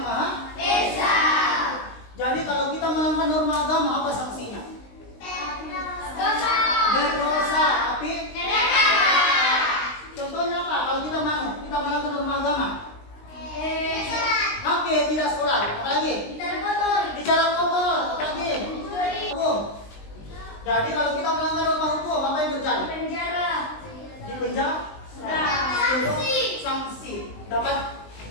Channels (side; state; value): right; late; 19 ms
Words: Maha Esa. Jadi kalau kita melanggar norma agama, apa sanksinya? Berdosa, tapi contohnya apa? Kalau kita melanggar norma agama, oke, tidak sholat, apalagi bicara kotor, apalagi hukum. Jadi kalau kita melanggar norma hukum, apa yang terjadi? Di penjara, sanksi, dapat